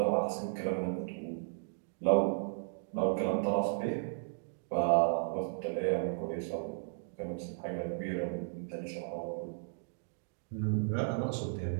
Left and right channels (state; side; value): silent; left; digital silence